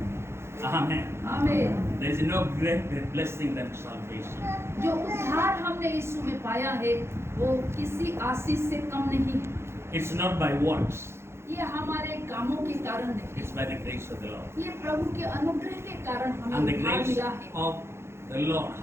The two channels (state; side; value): late; left; 0.12 ms